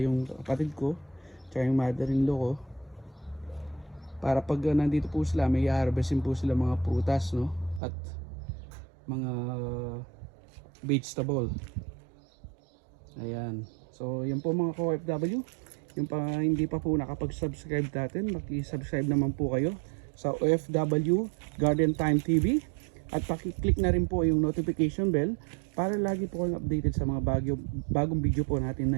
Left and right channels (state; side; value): drops out; left; at 7.8 s